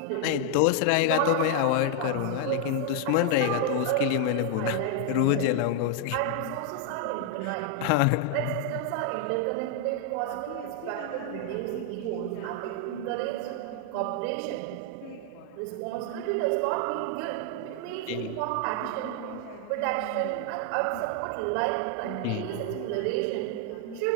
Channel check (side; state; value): both; different; correlation 0.00